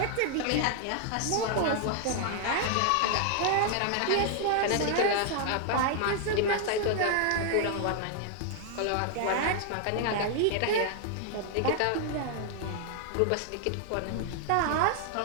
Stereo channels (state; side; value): different; both; correlation 0.00